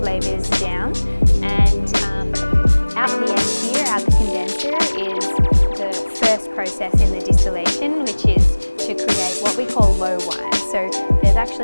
flavours down. And out the end here, out the condenser, is the first process in the distillation, which is to create what we call low wine. So there's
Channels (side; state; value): both; inverted; correlation -1.00